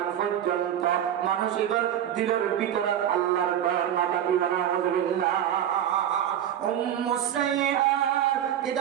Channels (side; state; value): left; quieter; 10.4 dB